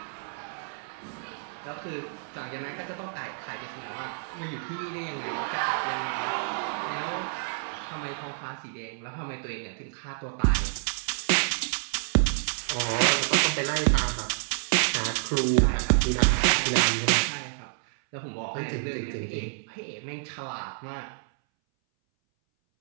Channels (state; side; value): silent; left; 59 dB below the other